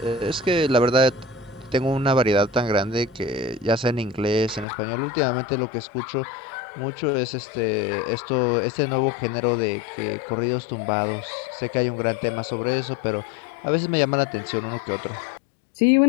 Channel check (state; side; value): drops out; right; at 4.7 s